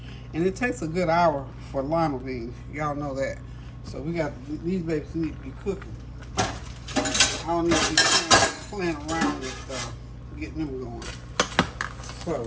And it takes a good hour for lima beans. Y'all know that. So we got, these babies need to be cooking. I don't need to be playing around with getting them going.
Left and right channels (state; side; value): identical; both; correlation 1.00